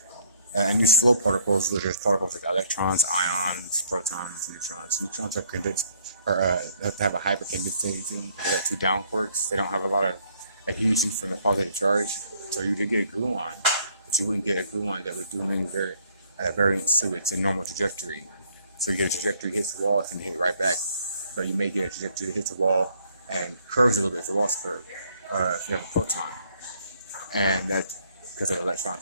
and use flow particles, which are particles like electrons, ions, protons, neutrons. Neutrons are condensed, or have to have a hypercondensating. They have two down quarks. They don't have a lot of adhesion from the positive charge. So you did get a gluon, but you wouldn't get a gluon that would do many variants to its normal trajectory. So you get a trajectory hits the wall, it's going to hit right back. But you may get a trajectory that hits the wall and curves a little bit. The wall's curved if you have a proton, and that's because of the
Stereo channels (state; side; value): inverted; both; correlation -0.65